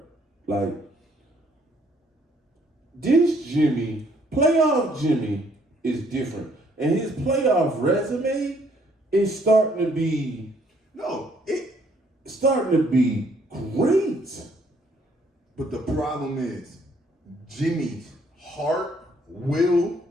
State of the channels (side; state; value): both; normal; correlation 0.65